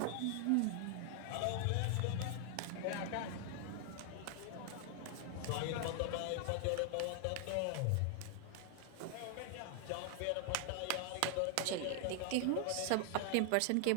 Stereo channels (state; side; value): different; both; correlation 0.00